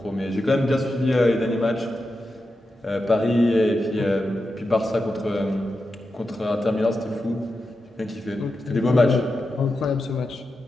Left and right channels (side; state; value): both; normal; correlation 0.89